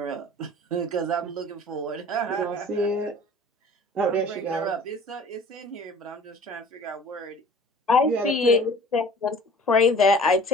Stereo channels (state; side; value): normal; both; correlation 0.47